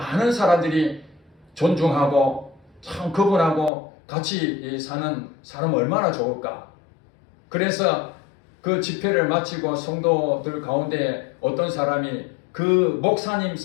사람들이 존중하고 참 그분하고 같이 사는 사람 얼마나 좋을까. 그래서 그 집회를 마치고 성도들 가운데 어떤 사람이 그 목사님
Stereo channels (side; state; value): right; drops out; at 3.7 s